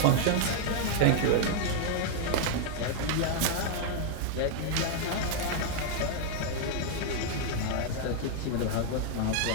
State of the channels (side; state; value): both; different; correlation 0.00